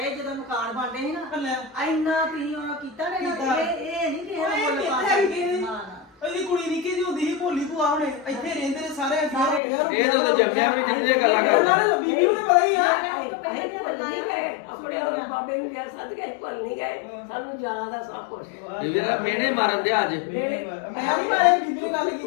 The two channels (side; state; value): right; drops out; at 9.6 s